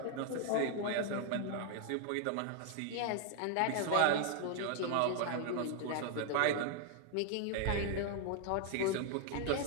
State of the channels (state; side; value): different; both; correlation 0.00